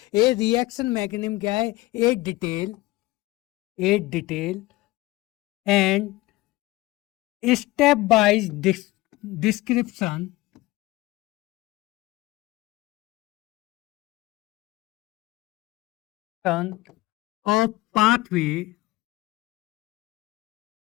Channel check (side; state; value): right; quieter; 19.3 dB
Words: ये रिएक्शन मैकेनिज्म क्या है? ए detail and step wise description of pathway